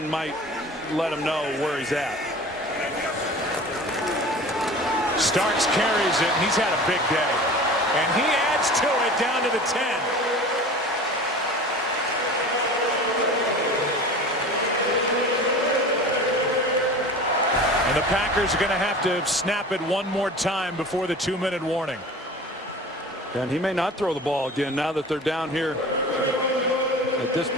might let him know where he's at. Starks carries it, and he's had a big day. And he adds to it down to the 10. And the Packers are going to have to snap it one more time before the 2-minute warning. And he may not throw the ball again now that they're down here at this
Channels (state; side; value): normal; both; correlation 0.38